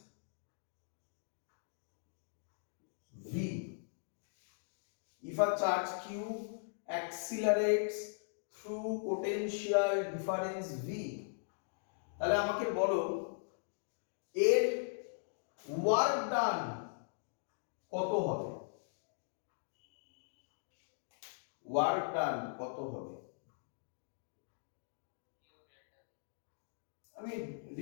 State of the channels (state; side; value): silent; right; digital silence